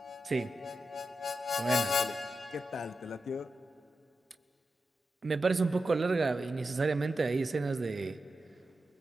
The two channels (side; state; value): both; normal; correlation 0.90